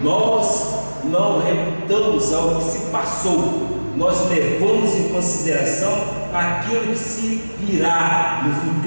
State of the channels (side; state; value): both; inverted; correlation -1.00